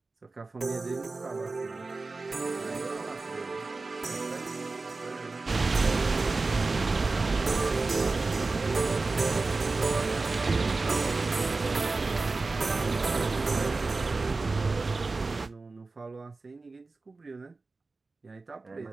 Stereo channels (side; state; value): left; quieter; 3.7 dB